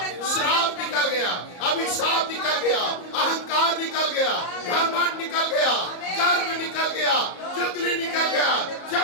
श्राप निकल गया, अभिशाप निकल गया, अहंकार निकल गया, घमंड निकल गया, गर्व निकल गया, चुगली निकल गया,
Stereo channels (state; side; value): late; right; 34 ms